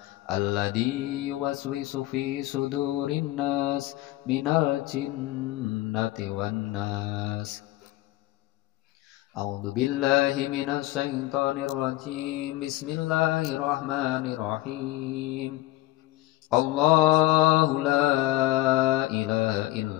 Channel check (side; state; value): right; quieter; 16.8 dB